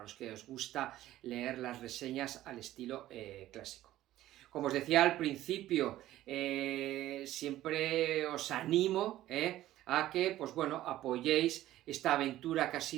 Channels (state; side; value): quieter; left; 14.4 dB